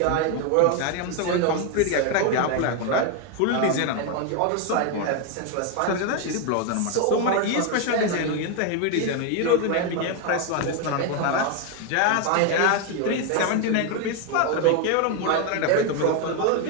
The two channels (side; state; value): both; different; correlation 0.01